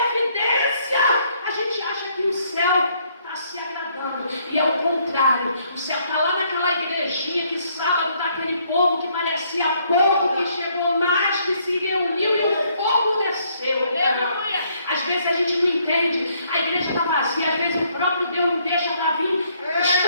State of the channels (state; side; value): inverted; both; correlation -0.68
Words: evidência, a gente acha que o céu está se agradando. E é o contrário. O céu está lá naquela igrejinha que sábado está aquele povo que parecia pouco, que chegou mais, que se reuniu e o fogo desceu. Às vezes a gente não entende. A igreja está vazia, às vezes o próprio Deus não deixa para vir